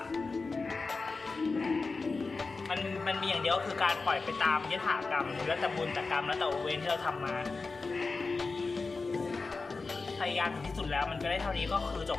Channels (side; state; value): right; quieter; 4.0 dB